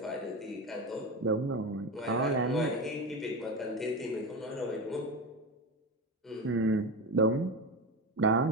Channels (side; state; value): both; normal; correlation 0.21